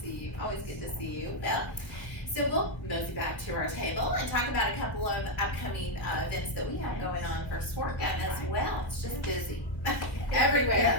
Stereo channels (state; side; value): late; right; 2.1 ms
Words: see you. Always good to see you. Well, so we'll mosey back to our table and talk about a couple of upcoming events that we have going on for Swerga as well. It's just busy. Everywhere.